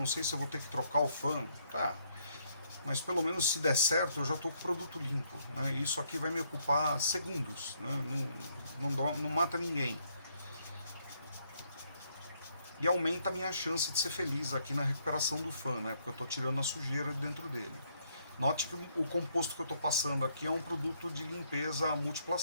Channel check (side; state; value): both; inverted; correlation -0.71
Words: sei se eu vou ter que trocar o fã. Tá, mas pelo menos se der certo eu já tô com o produto limpo, né? Isso aqui vai me ocupar segundos, né? Não mata ninguém. E aumenta a minha chance de ser feliz aqui na recuperação do fã, né? Porque eu tô tirando a sujeira dentro dele. Note que o composto que eu estou passando aqui é um produto de limpeza à